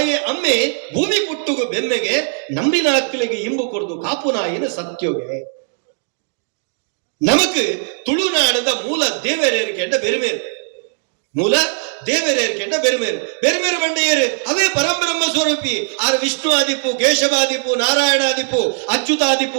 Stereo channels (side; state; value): left; silent; digital silence